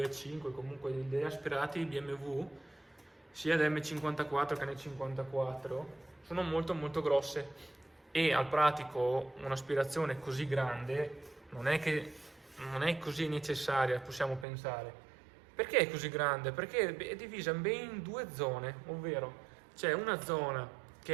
comunque degli aspirati BMW sia dell'M54 che N54 sono molto grosse e al pratico un'aspirazione così grande non è così necessaria, possiamo pensare. Perché è così grande? Perché è divisa ben in due zone, ovvero c'è una zona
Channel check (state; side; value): drops out; left; at 14.5 s